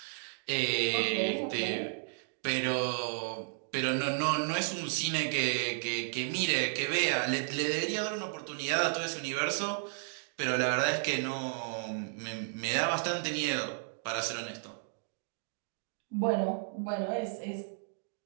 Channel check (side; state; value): left; silent; digital silence